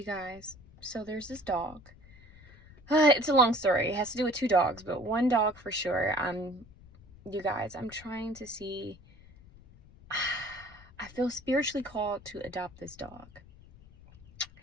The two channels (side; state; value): left; noise; rumble, 22 dB below the sound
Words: guys, so there's this dog. It's a long story. It has to do with two dogs, but one dog for sure. You guys, I'm trying to see. I feel spiritually called to adopt this dog.